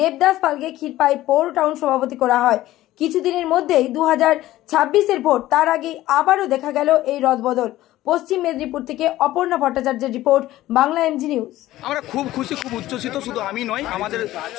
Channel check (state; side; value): quieter; right; 15.4 dB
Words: পালকে ক্ষীরপাই পৌর টাউন সভাপতি করা হয়। কিছুদিনের মধ্যেই 2026-এর ভোট, তার আগে আবারও দেখা গেল এই রদবদল। পশ্চিম মেদিনীপুর থেকে অপর্ণা ভট্টাচার্যের রিপোর্ট, বাংলা এমজি নিউজ। আমরা খুব খুশি, খুব উচ্ছ্বসিত। শুধু আমি নয়, আমাদের